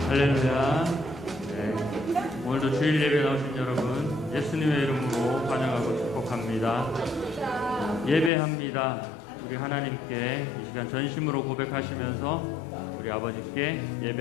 할렐루야. 네. 오늘도 주일 예배 나오신 여러분 예수님의 이름으로 환영하고 축복합니다. 예배합니다. 우리 하나님께 이 시간 전심으로 고백하시면서 우리 아버님께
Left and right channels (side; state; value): right; drops out; at 8.3 s